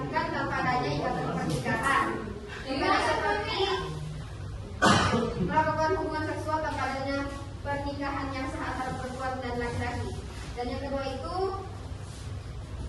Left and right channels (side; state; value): both; identical; correlation 1.00